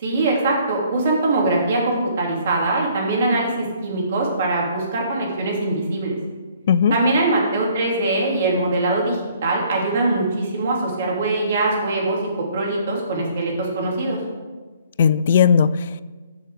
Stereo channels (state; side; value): inverted; both; correlation -0.60